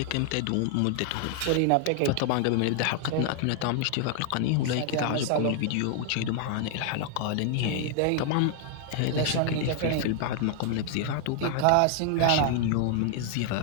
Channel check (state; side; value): different; both; correlation 0.00